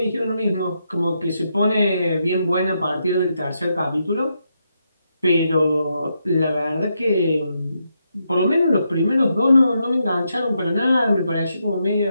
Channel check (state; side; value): inverted; both; correlation -0.82